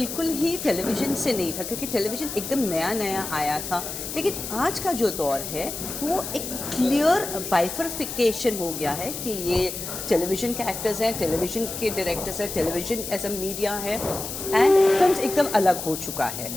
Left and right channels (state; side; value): noise; left; hiss, 7 dB below the sound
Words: ही टेलीविज़न से नहीं था, क्योंकि टेलीविज़न एकदम नया नया आया था। लेकिन आज का जो दौर है, वो एक क्लियर बाइफर्फिकेशन हो गया है कि ये टेलीविज़न के एक्टर्स हैं, टेलीविज़न के डायरेक्टर्स हैं, टेलीविज़न एज अ मीडिया है, एंड फिल्म एकदम अलग हो चुका है।